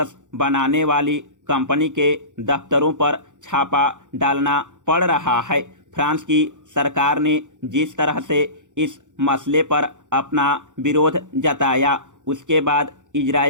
बनाने वाली कंपनी के दफ्तरों पर छापा डालना पड़ रहा है। फ्रांस की सरकार ने जिस तरह से इस मसले पर अपना विरोध जताया, उसके बाद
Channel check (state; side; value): late; left; 0.86 ms